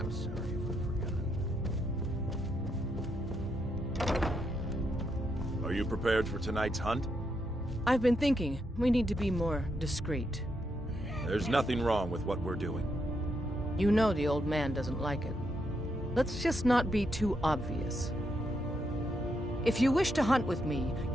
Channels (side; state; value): both; normal; correlation 0.80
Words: sorry if I've forgotten. Are you prepared for tonight's hunt? I've been thinking we need to be more discreet. There's nothing wrong with what we're doing. You know the old man doesn't like it. Let's just not be too obvious. If you wish to hunt with me,